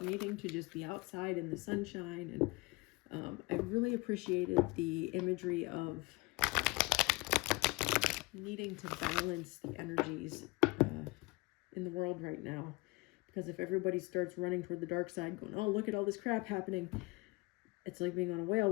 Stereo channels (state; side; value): quieter; right; 25.3 dB